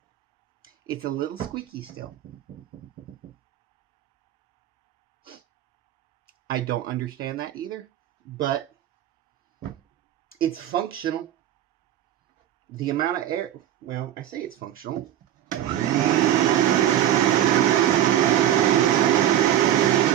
It's a little squeaky still. I don't understand that either, but it's functional. The amount of air, well, I say it's functional. Yeah,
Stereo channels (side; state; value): left; quieter; 11.7 dB